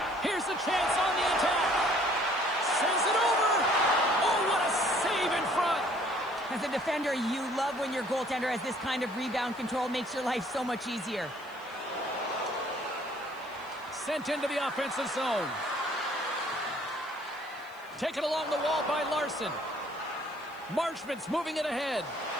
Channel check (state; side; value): noise; left; hiss, 28 dB below the sound